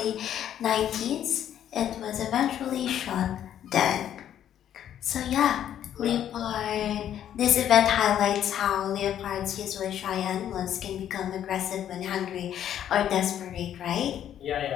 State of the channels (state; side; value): quieter; right; 10.4 dB